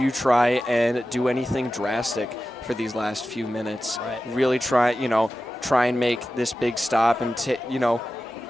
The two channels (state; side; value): normal; both; correlation 0.94